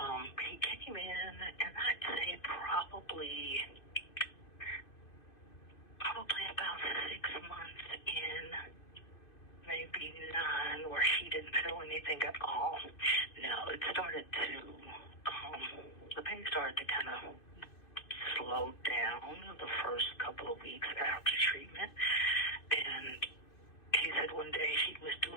He came in, and I'd say probably about 6 months in, maybe 9, where he didn't feel anything at all. Now, it started to, the pain started to kind of slow down the first couple of weeks after treatment. And he said one day he was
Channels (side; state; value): right; late; 2.5 ms